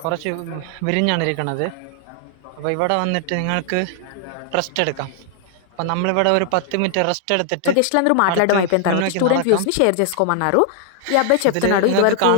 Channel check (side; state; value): both; different; correlation 0.00